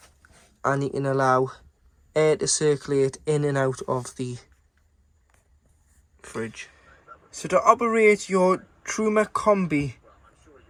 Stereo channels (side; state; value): both; identical; correlation 1.00